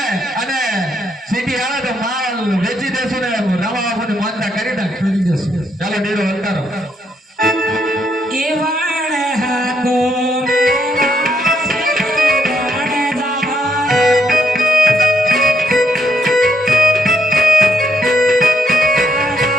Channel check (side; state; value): both; normal; correlation 0.74